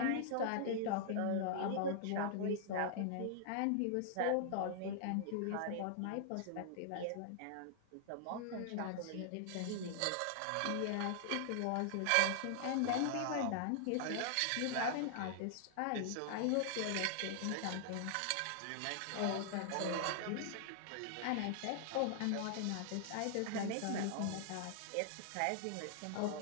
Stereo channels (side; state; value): both; different; correlation -0.01